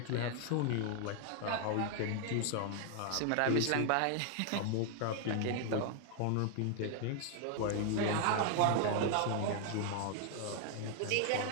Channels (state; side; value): different; both; correlation 0.00